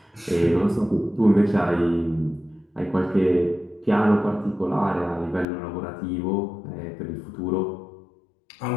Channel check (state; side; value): drops out; right; at 5.5 s